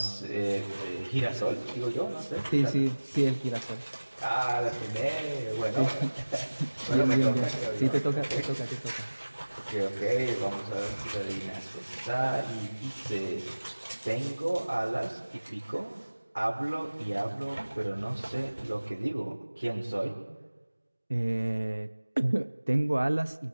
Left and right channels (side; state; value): both; inverted; correlation -1.00